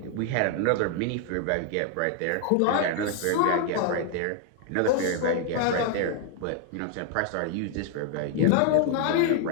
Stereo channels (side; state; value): both; different; correlation 0.00